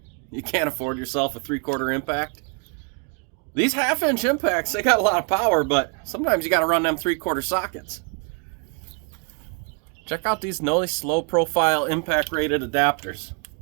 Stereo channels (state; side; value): quieter; left; 36.7 dB